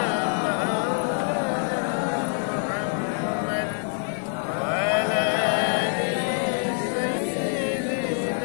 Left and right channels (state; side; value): silent; right; 60 dB below the other